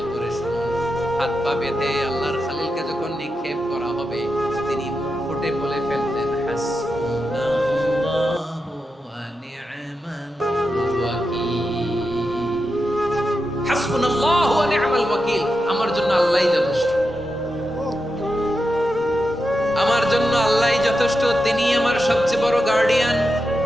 করে শুনুন। হাত পা বেঁধে আল্লাহর খলিলকে যখন নিক্ষেপ করা হবে, তিনি মুখ ফুটে বলে ফেলতেন, হাসবুনাল্লাহু ওয়া নি'মাল ওয়াকিল। হাসবুনাল্লাহু ওয়া নি'মাল ওয়াকিল, আমার জন্য আল্লাহই যথেষ্ট, আমার জন্য আল্লাহই যথেষ্ট, তিনি আমার সবচেয়ে বড় গার্ডিয়ান,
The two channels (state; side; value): normal; both; correlation 0.88